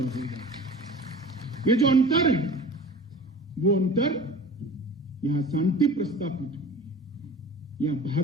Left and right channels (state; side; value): normal; both; correlation 0.39